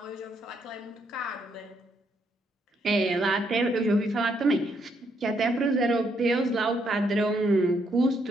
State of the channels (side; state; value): both; normal; correlation 0.74